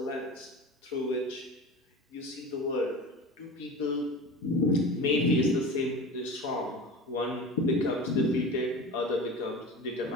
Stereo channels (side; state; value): both; normal; correlation 0.33